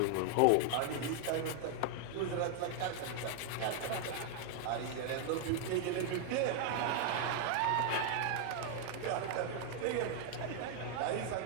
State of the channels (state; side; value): different; both; correlation 0.00